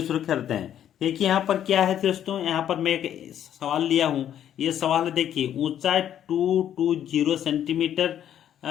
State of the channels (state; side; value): quieter; right; 10.4 dB